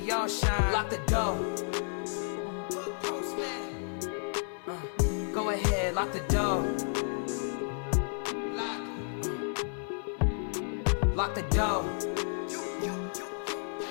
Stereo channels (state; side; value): silent; right; digital silence